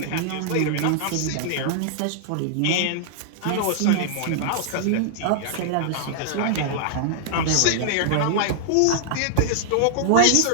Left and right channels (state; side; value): different; both; correlation -0.01